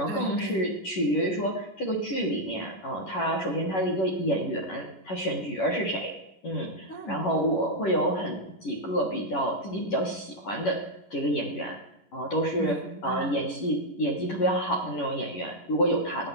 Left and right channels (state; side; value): late; right; 11 ms